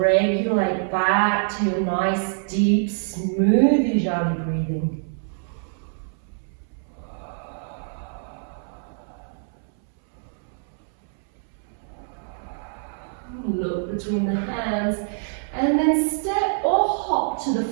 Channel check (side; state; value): left; silent; 62 dB below the other